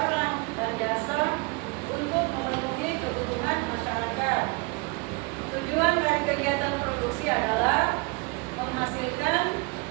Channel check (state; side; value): quieter; left; 28.0 dB